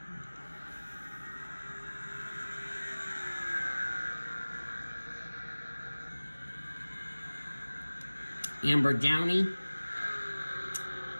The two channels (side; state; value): both; inverted; correlation -1.00